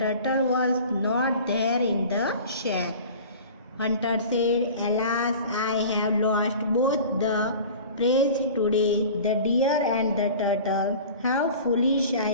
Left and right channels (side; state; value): both; inverted; correlation -0.40